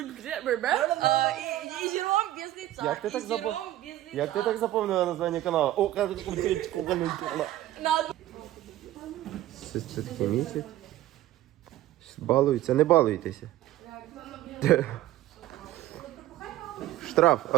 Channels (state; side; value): quieter; left; 14.6 dB